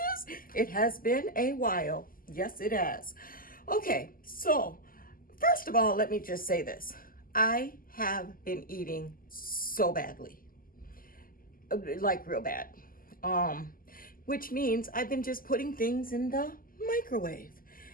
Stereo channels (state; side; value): late; right; 0.41 ms